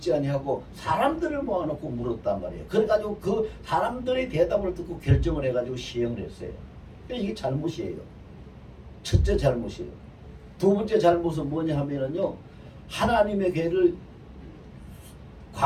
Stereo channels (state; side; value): identical; both; correlation 1.00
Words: 아니하고 사람들을 모아놓고 물었단 말이에요. 그래가지고 그 사람들의 대답을 듣고 결정을 해가지고 시행을 했어요. 이게 잘못이에요. 첫째 잘못이에요. 두 번째 잘못은 뭐냐 하면은요, 하나님의 궤를